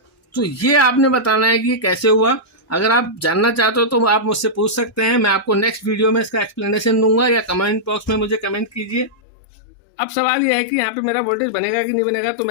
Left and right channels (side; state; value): right; drops out; at 9.2 s